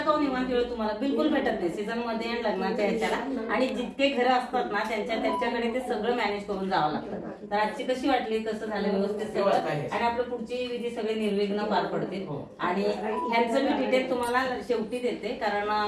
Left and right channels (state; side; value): identical; both; correlation 1.00